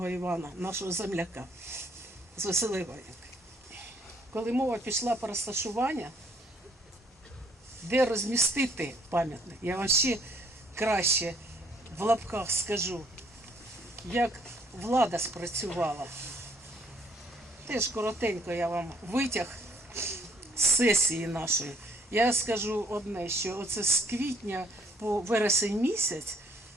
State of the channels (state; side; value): normal; both; correlation 0.65